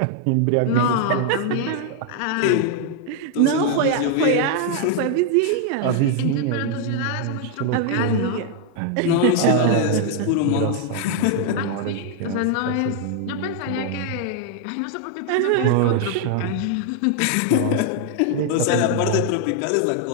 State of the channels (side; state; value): both; different; correlation 0.00